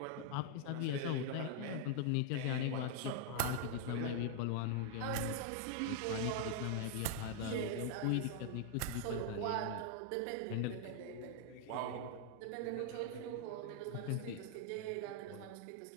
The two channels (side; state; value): both; different; correlation -0.01